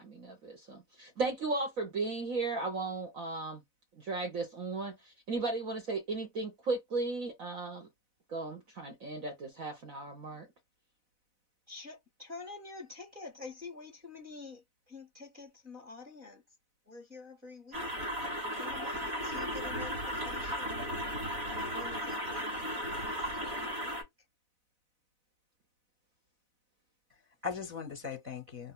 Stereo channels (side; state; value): left; late; 4.0 ms